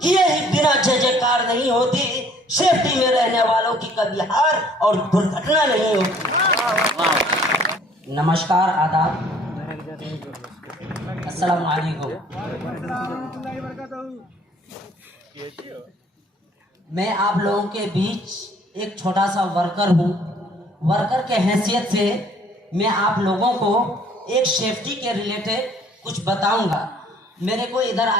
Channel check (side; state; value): both; normal; correlation 0.57